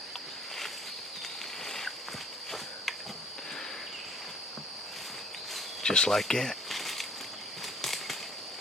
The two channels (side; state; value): both; normal; correlation 0.56